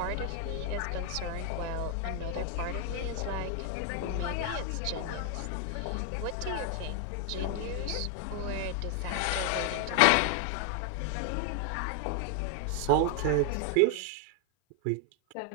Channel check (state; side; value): different; both; correlation 0.01